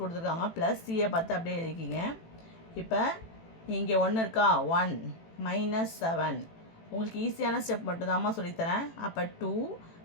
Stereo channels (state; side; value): late; right; 18 ms